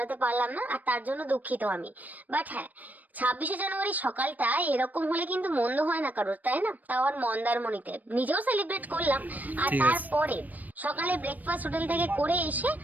পারলাম না, আর তার জন্য দুঃখিত আমি। বাট হ্যাঁ, 26শে জানুয়ারি সকালটা এরকম হলে কিন্তু মন্দ হয় না কারোর, তাই না? তাও আর মন্দারমণিতে নিজেও সেলিব্রেট করলাম। আর তারপরে সকালে ব্রেকফাস্ট হোটেল থেকে করে এসে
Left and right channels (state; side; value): late; left; 0.082 ms